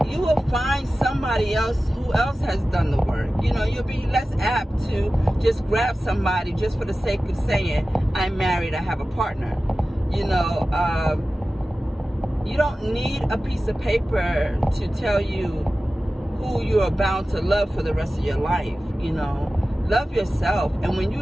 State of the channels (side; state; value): both; normal; correlation 0.95